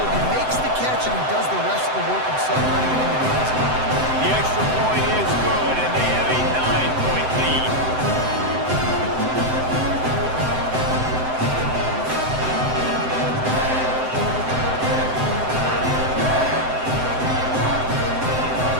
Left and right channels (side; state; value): left; late; 7.8 ms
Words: He makes the catch, and he does the rest of the work himself, running it into the end zone. The extra point is good, and they have a 9-point lead.